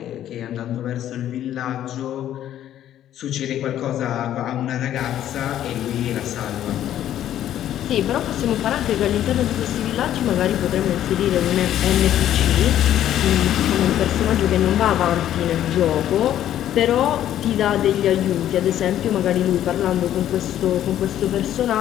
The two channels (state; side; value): quieter; right; 11.6 dB